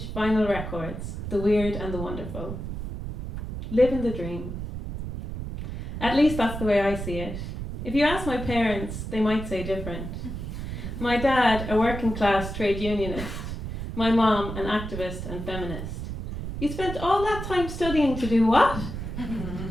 vinyl records, the weird and the wonderful. Living the dream. At least that's the way I see it. If you ask my parents, they might say different. My dad, a working class trade unionist. My mom, an activist and feminist. You spent all that time studying to do what?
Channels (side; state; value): right; noise; rumble, 6 dB below the sound